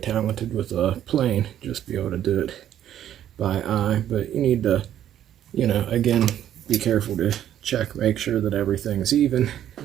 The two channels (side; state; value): left; quieter; 11.0 dB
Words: with a plane, just be able to do it by eye, but you need to, again, be careful to check, make sure that everything's even.